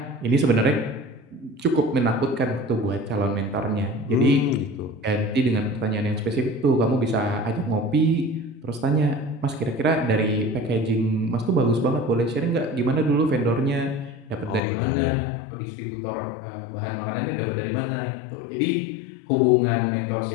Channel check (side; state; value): right; drops out; at 14.6 s